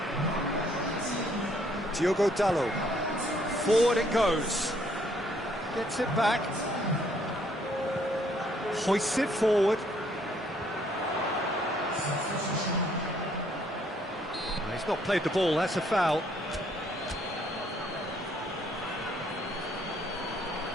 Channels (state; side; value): normal; both; correlation 0.66